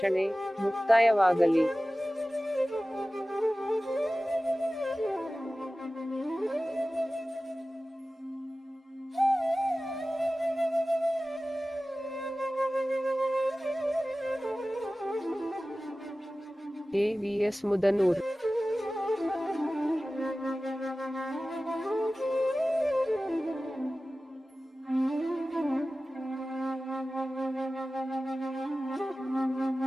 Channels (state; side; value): normal; both; correlation 0.96